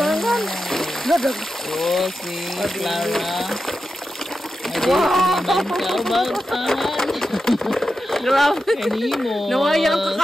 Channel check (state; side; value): normal; both; correlation 0.90